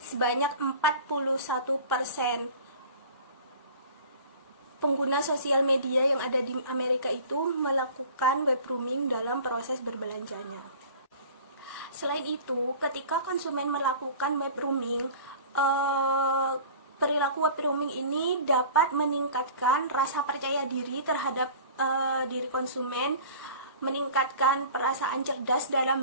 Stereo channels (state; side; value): inverted; both; correlation -0.42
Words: 41% pengguna sosial media yang ada di Amerika itu melakukan web rooming dalam proses berbelanjanya. Selain itu, ketika konsumen melakukan web rooming, perilaku web rooming ini dapat meningkatkan rasa percaya diri terhadap diri konsumen, meningkatkan perasaan cerdas